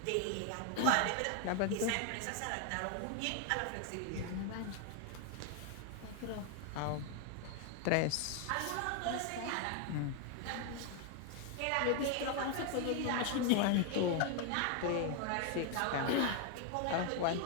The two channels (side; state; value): both; different; correlation 0.00